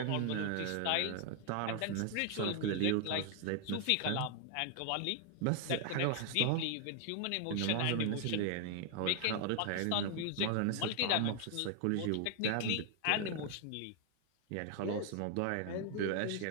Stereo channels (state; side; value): different; both; correlation 0.00